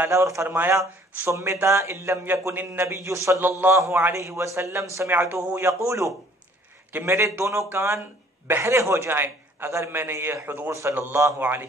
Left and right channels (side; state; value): both; normal; correlation 0.57